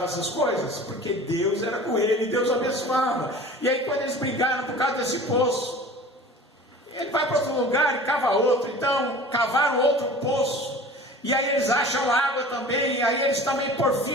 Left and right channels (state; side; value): normal; both; correlation 0.41